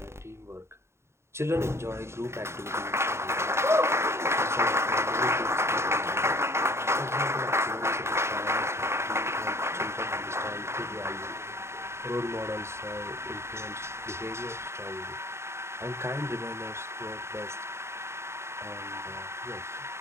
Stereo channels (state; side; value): late; left; 0.13 ms